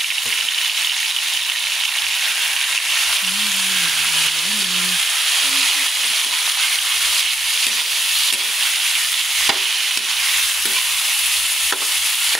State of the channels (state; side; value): normal; both; correlation 0.82